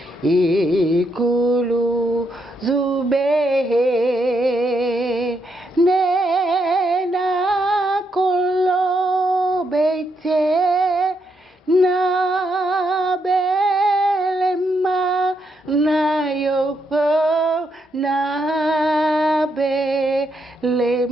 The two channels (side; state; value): both; normal; correlation 0.78